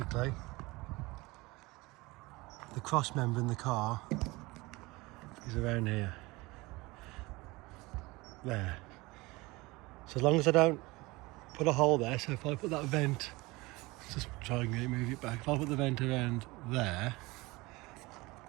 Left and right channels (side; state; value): left; quieter; 22.4 dB